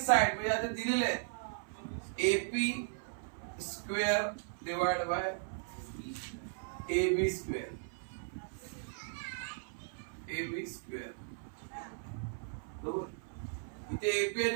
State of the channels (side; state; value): left; silent; 53 dB below the other